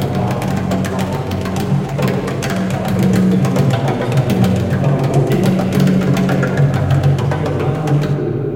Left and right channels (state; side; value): identical; both; correlation 1.00